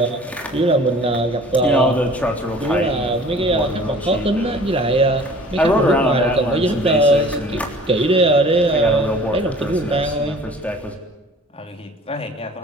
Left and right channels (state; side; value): normal; both; correlation 0.48